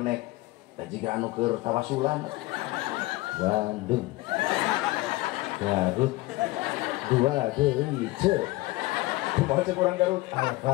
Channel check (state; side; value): quieter; right; 19.9 dB